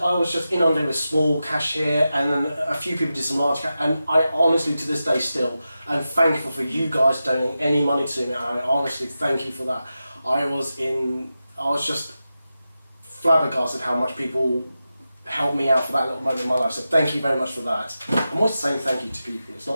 I was just inundated with small cash here, and then a few people did some large cash, and I honestly, to this day still, am thankful for you guys donating any money to me, and I honestly thank you for that. I was just flabbergasted how much people helped me out for that little moment in my life, so thank you very much for that. I'm always saying thank you to people, it's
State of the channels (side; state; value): both; inverted; correlation -0.92